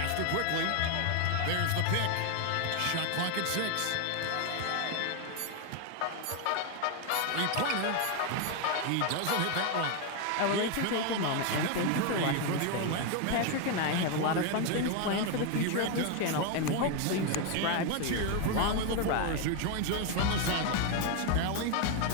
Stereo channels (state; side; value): different; both; correlation 0.01